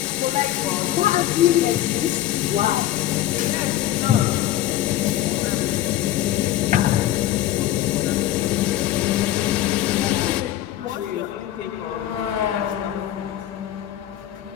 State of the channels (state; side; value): quieter; right; 13.5 dB